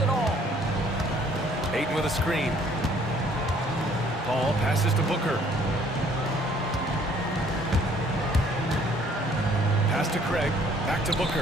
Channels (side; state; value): both; normal; correlation 0.60